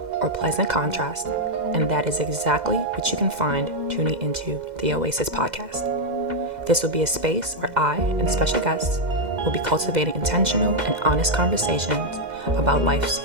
or pleasant contrast, and that is exactly what you can find tuning into the Oasis podcast. This will be a space where I and special guests will be cultivating intentional and honest conversations about life's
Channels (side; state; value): left; late; 2.0 ms